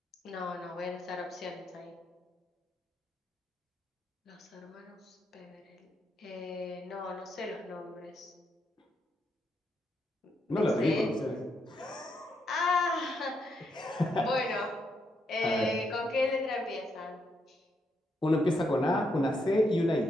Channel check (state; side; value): normal; both; correlation 0.79